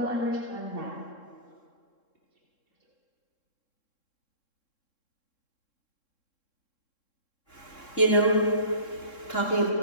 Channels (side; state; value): right; late; 3.7 ms